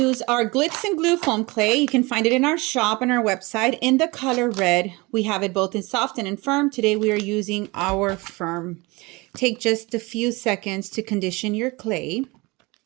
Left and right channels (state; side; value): quieter; left; 24.4 dB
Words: our Glitz and Glue foam clay. You can find it in our shop and our website in the color red. We have it both in soft and in firm. Today we are using our firm. Take just a few seconds to condition your clay.